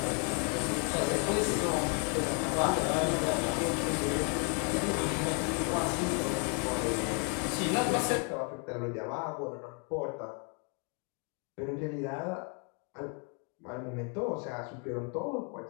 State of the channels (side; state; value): right; quieter; 38.2 dB